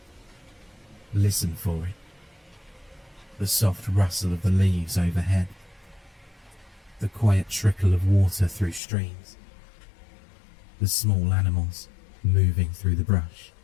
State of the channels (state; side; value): drops out; right; at 8.8 s